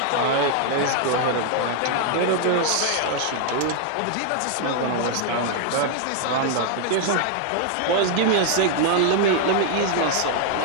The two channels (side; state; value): both; different; correlation 0.00